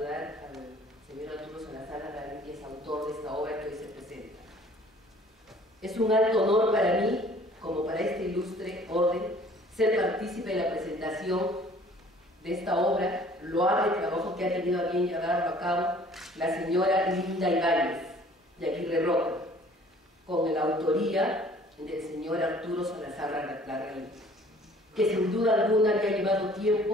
al señor Arturo Salazar Larraín, que es autor de esta obra que hoy se presenta. Es un alto honor para mí, como para este ilustre orden, ser partícipe de la presentación de esta obra, loable trabajo que ha tenido a bien llevarlo a cabo la señora Linda Ibáñez de Aguirre Roca, con la autoría del señor Arturo Salazar Larraín, que sin duda alguna le ha llevado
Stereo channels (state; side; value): normal; both; correlation 0.53